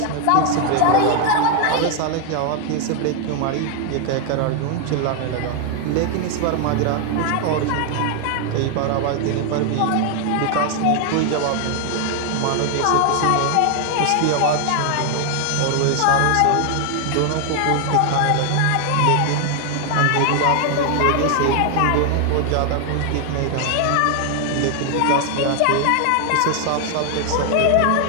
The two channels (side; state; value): both; different; correlation 0.00